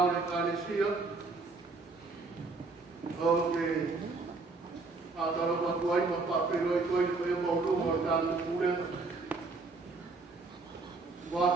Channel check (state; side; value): quieter; left; 3.8 dB